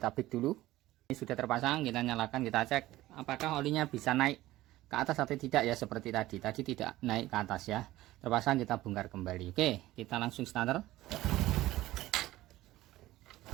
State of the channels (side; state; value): left; quieter; 16.4 dB